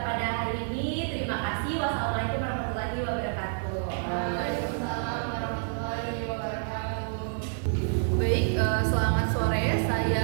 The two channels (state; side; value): silent; left; digital silence